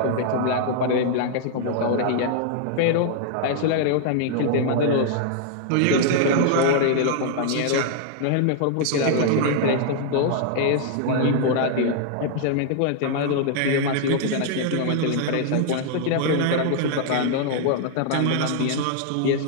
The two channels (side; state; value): both; different; correlation -0.01